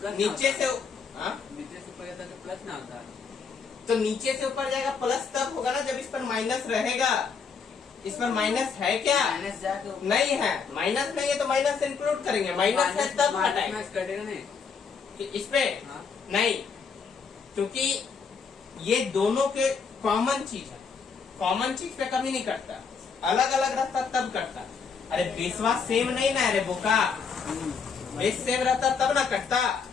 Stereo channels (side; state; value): right; quieter; 5.7 dB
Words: नीचे से हाँ? नीचे से ऊपर जाता है तो प्लस ना होता है। तो नीचे से ऊपर जाएगा प्लस तब होगा ना जब इस पर माइनस रहेगा, इस पर माइनस है क्या? माइनस जाके नहीं है। माइनस नहीं है तो माइनस इंक्लूड करेंगे, माइनस है तब हटाएंगे। माइनस कटेगा नहीं। कि इस पे हाँ। नहीं, क्योंकि ये दोनों के कॉमन चीज है। कॉमन चीज पे कभी नहीं कटता, अलग अलग रहता तब कटता। अरे बेसवा सेम नहीं ना, अरे बोका बेस सेम रहता तब ना कटता।